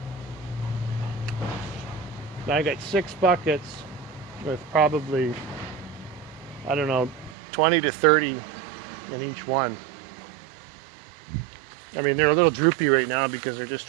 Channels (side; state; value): left; drops out; at 7.4 s